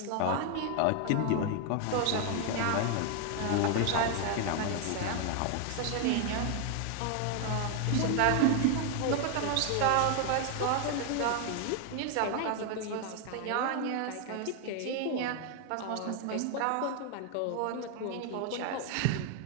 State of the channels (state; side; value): different; both; correlation 0.00